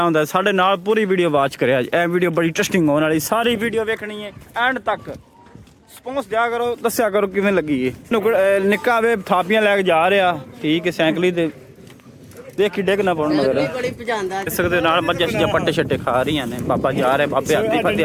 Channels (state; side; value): identical; both; correlation 1.00